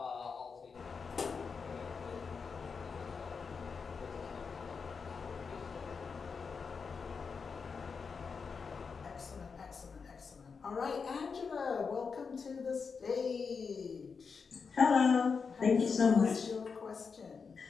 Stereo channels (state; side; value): quieter; right; 5.4 dB